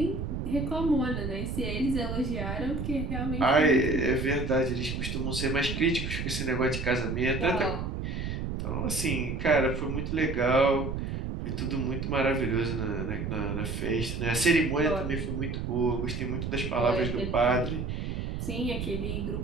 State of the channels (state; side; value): noise; right; rumble, 3 dB below the sound